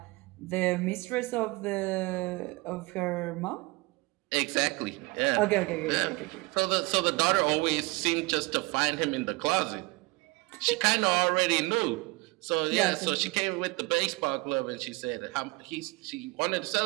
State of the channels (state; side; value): quieter; left; 24.4 dB